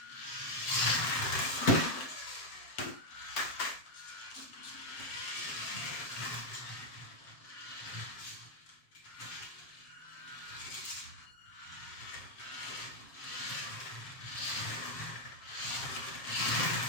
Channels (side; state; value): right; late; 7.5 ms